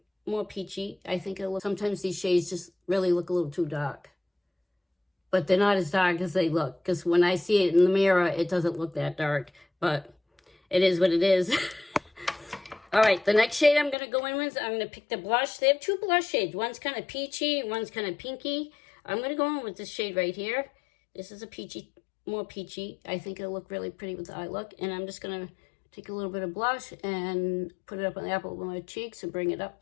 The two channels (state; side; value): drops out; right; at 14.0 s